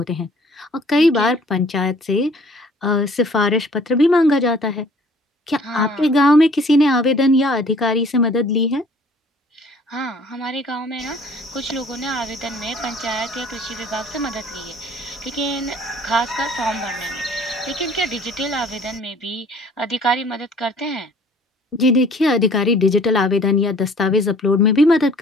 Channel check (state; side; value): normal; both; correlation 0.54